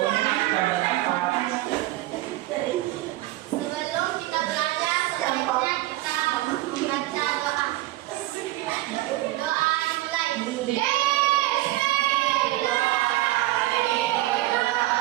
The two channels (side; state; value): left; quieter; 17.7 dB